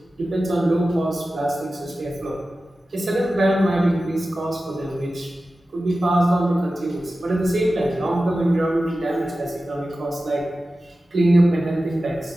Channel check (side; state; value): both; normal; correlation 0.94